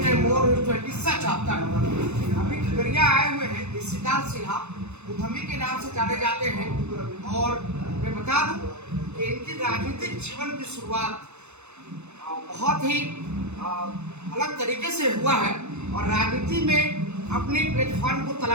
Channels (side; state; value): left; late; 0.81 ms